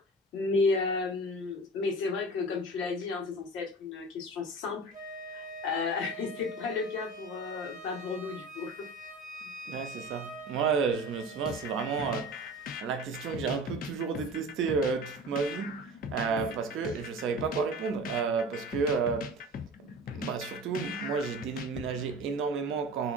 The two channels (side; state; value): both; normal; correlation 0.36